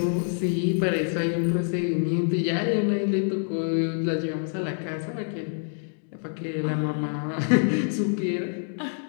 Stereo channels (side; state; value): right; silent; 56 dB below the other